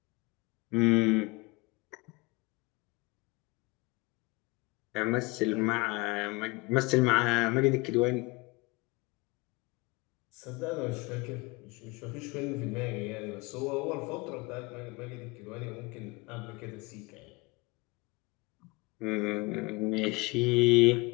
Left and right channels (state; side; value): quieter; right; 25.0 dB